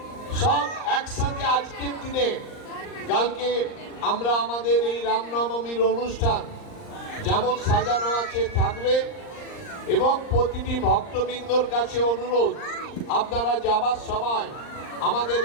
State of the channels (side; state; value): right; late; 39 ms